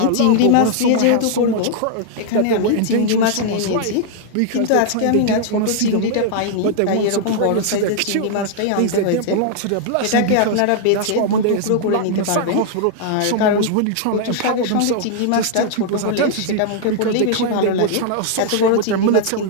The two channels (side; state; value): both; different; correlation -0.01